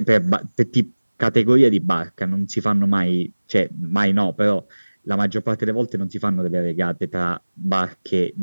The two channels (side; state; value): both; inverted; correlation -1.00